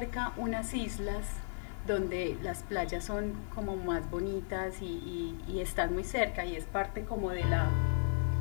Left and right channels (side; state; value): right; silent; 54 dB below the other